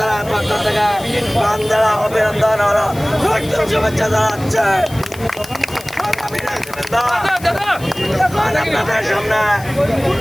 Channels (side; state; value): left; noise; hiss, 18 dB below the sound